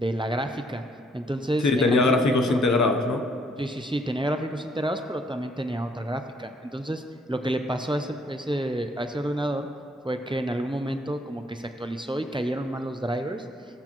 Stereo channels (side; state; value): both; normal; correlation 0.66